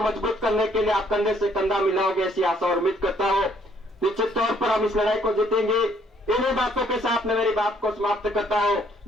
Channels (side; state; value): both; normal; correlation 0.65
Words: मजबूत करने के लिए आप कंधे से कंधा मिलाओगे, ऐसी आशा और उम्मीद करता हूं। निश्चित तौर पर हम इस लड़ाई को जीतेंगे। इन्हीं बातों के साथ मैं मेरी बात को समाप्त करता हूं।